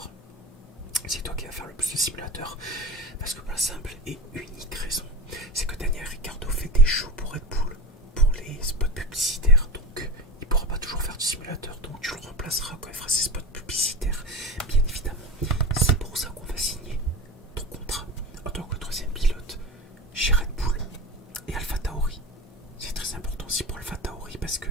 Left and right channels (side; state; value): both; normal; correlation 0.29